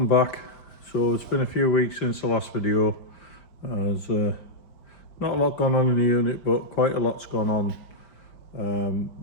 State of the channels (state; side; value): late; right; 5.1 ms